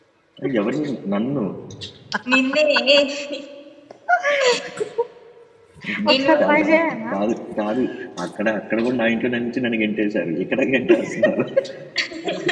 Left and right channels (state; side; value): identical; both; correlation 1.00